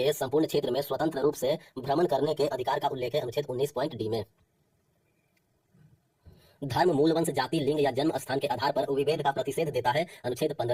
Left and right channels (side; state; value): both; identical; correlation 1.00